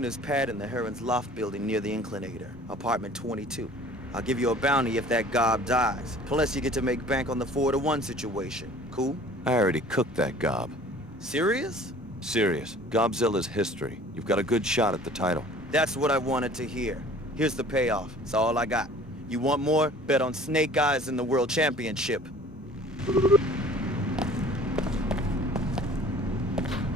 pad in the Heron's Loft building near the Inclinator, apartment 22. I'll give you a bounty if that gob dies. Plus you get to make bank on the 4 to 1 situation. Cool? I already cooked that gob. Serious? Serious. Gobzilla's history. You've got a good shot at the title. That's what I wanted to hear. Here's the payoff. It's all I got. You want more? Bet on Snake Eyes in the World Championship.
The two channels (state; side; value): normal; both; correlation 0.49